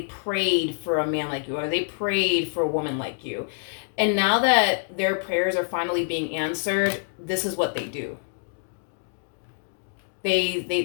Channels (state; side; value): silent; right; digital silence